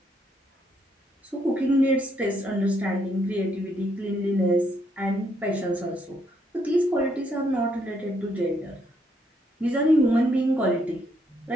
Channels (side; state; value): both; normal; correlation 0.73